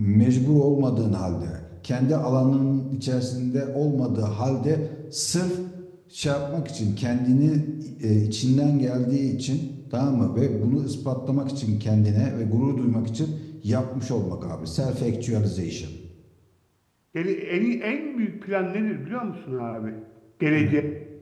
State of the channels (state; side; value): identical; both; correlation 1.00